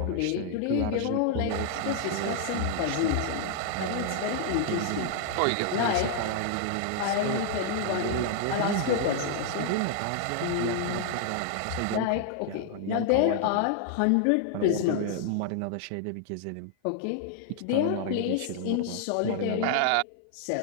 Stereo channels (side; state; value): both; different; correlation -0.01